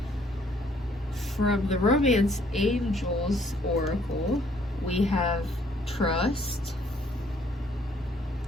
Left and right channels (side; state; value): both; normal; correlation 0.65